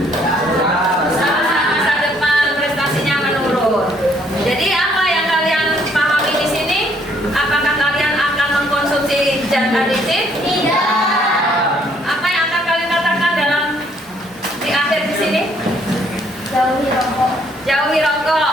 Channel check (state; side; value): normal; both; correlation 0.66